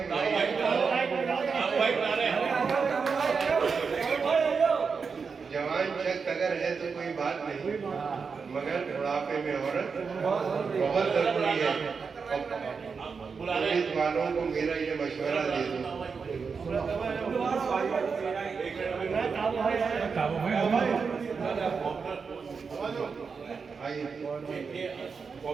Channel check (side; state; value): left; quieter; 5.4 dB